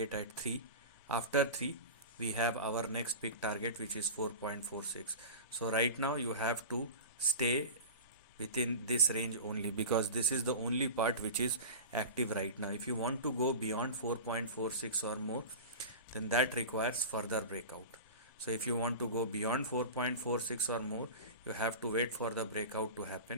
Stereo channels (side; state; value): both; inverted; correlation -0.30